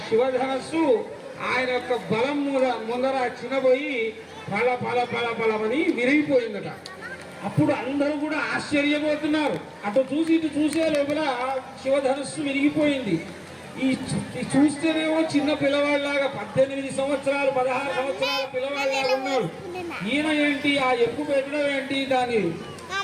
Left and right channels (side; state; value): both; identical; correlation 1.00